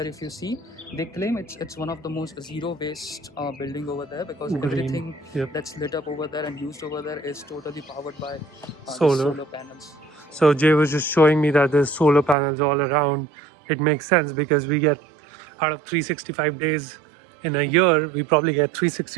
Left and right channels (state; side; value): drops out; left; at 12.4 s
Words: if you see, they claim it's one of the most zero waste building over there because Green. everything Yep. that's lit up over there and used over there is totally powered by the Solar. solar panels. So Jay was just showing me that there's solar panels all around. It makes sense because we get out of 365 days in a year, we probably get